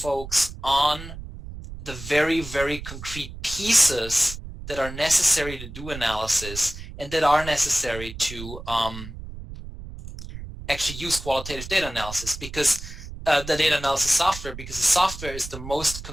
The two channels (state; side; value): noise; right; rumble, 11 dB below the sound